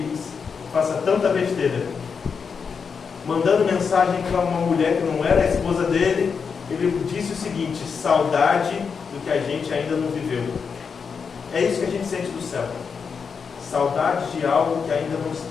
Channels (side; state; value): right; quieter; 5.9 dB